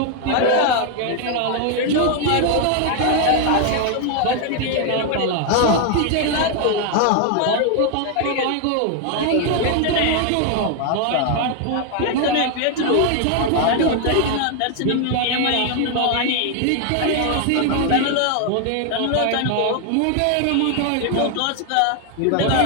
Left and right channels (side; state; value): both; different; correlation 0.00